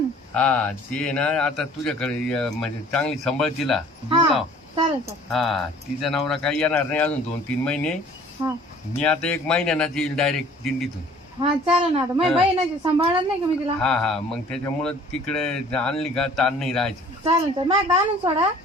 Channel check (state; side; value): normal; both; correlation 0.52